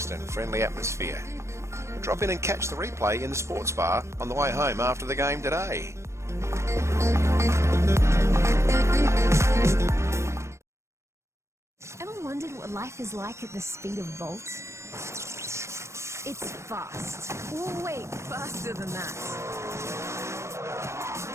and friendly atmosphere. Drop in and catch the replay in the sports bar on the way home after the game today. Ever wondered what life is like at the speed of Volt? It's fast. Oh, wait, faster than that.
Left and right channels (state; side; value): late; left; 0.13 ms